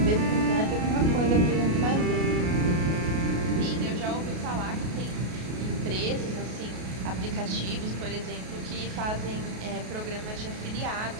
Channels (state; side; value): late; left; 33 ms